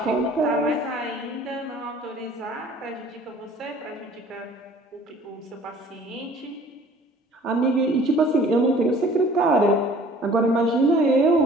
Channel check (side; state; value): both; normal; correlation 0.51